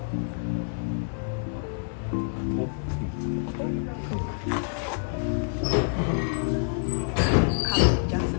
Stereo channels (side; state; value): right; silent; 57 dB below the other